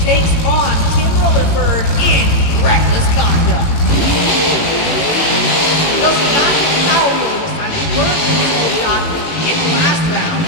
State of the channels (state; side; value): late; right; 18 ms